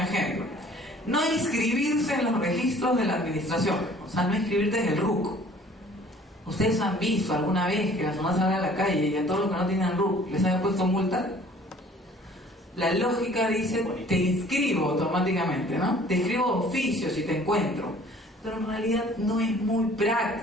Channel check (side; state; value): both; normal; correlation 0.52